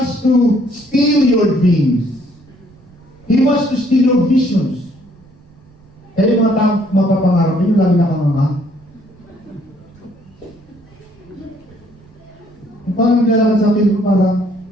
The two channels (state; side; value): noise; right; rumble, 27 dB below the sound